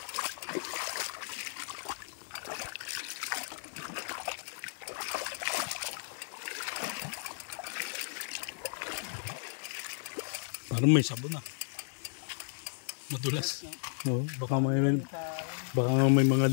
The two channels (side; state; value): right; silent; 55 dB below the other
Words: Parang may sabon ah. Madulas. Oo, baka may mga